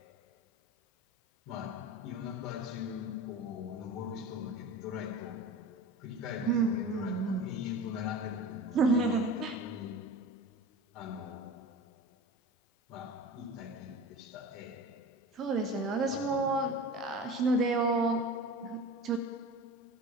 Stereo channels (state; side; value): normal; both; correlation 0.34